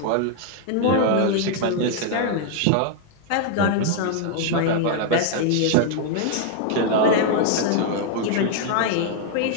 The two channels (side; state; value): both; different; correlation 0.00